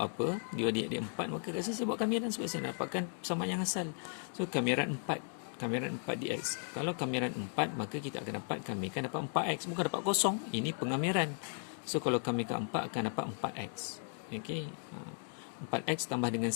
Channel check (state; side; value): silent; right; 54 dB below the other